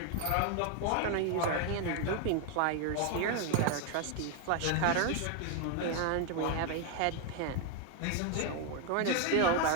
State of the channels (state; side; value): different; both; correlation 0.01